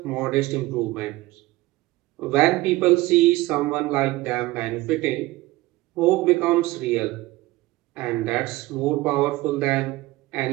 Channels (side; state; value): left; quieter; 19.3 dB